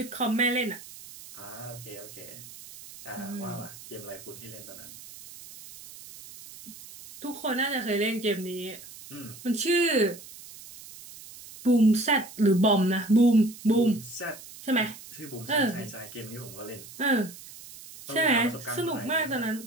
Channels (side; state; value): right; noise; hiss, 16 dB below the sound